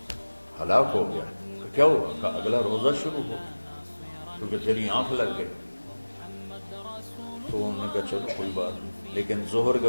ہلاک ہو گیا۔ کیا ہوا؟ کہ اگلا روزہ شروع ہو کیونکہ تیری آنکھ لگ گئی۔ تو انہوں نے کہا چلو کوئی بات نہیں، لیکن ظہر کے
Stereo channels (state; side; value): inverted; both; correlation -1.00